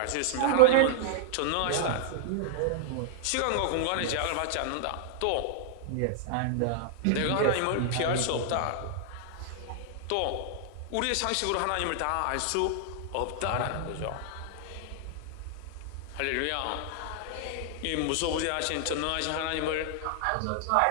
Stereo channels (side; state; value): both; different; correlation 0.00